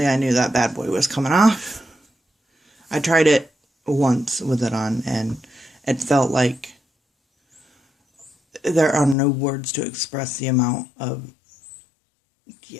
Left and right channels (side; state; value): right; drops out; at 9.2 s